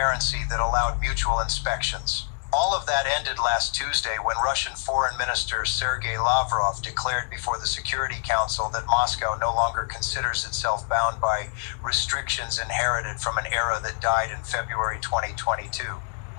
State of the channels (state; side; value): silent; right; digital silence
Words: that allowed mutual inspections. All of that ended last Tuesday when Russian Foreign Minister Sergei Lavrov declared before the Security Council that Moscow no longer considers itself bound by restrictions inherited from an era that died in February 2022.